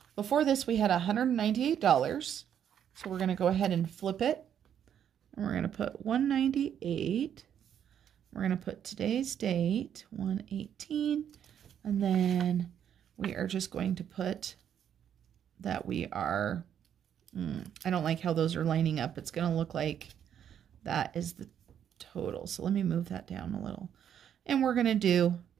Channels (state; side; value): quieter; left; 9.2 dB